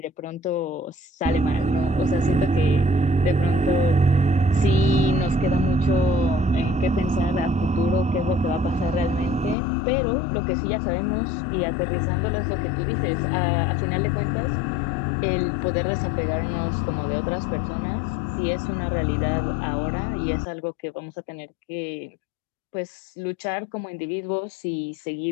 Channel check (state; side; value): drops out; right; at 9.6 s